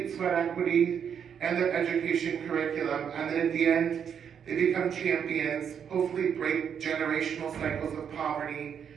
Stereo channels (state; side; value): quieter; left; 7.8 dB